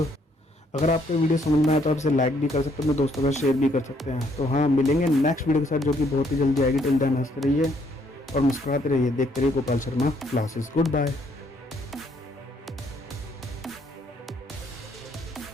अगर आपको वीडियो समझ में आया तो आप इसे लाइक भी कर सकते हैं, अपने दोस्तों का शेयर भी कर सकते हैं। तो हाँ, मिलेंगे नेक्स्ट वीडियो के साथ जो कि बहुत ही जल्दी आएगी। टिल देन हंसते रहिए और मुस्कुराते रहिए, देखते रहिए Gopal Sharma classes. Good bye.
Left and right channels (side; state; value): both; normal; correlation 0.68